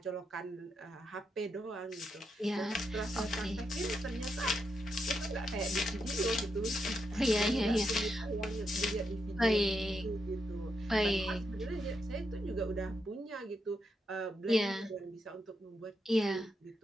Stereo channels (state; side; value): normal; both; correlation 0.83